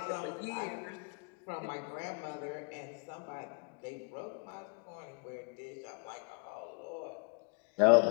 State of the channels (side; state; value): right; quieter; 35.5 dB